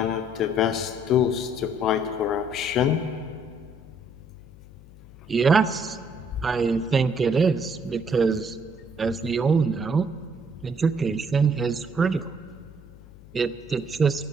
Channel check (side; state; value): left; noise; hum, 20 dB below the sound